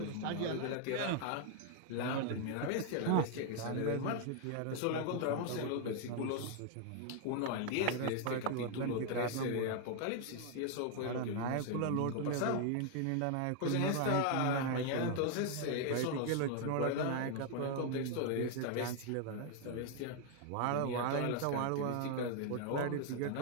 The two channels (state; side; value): different; both; correlation 0.00